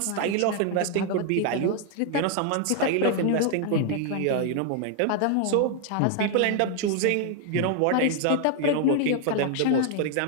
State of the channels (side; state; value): both; different; correlation 0.00